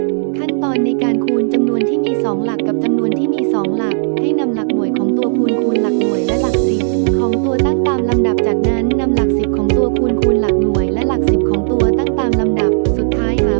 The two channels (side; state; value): left; silent; digital silence